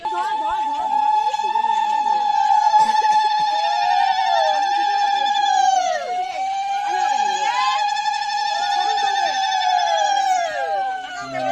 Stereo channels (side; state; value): both; identical; correlation 1.00